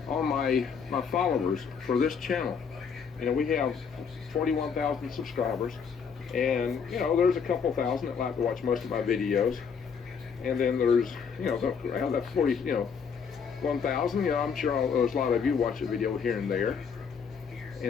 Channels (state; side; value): quieter; right; 6.3 dB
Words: All my followers for this channel, we have 41,000 subscribers, and there's a couple thousand that like to watch most of my videos, and then there's around that 1,000. I'm sure there's a lot of you watch a video here and there,